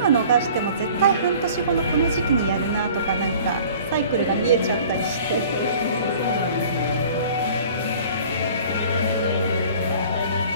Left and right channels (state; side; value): inverted; both; correlation -0.48